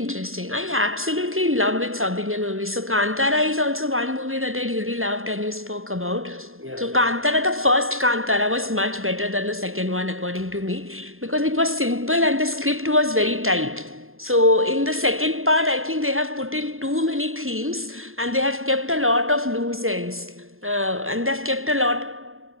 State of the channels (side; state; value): left; late; 0.61 ms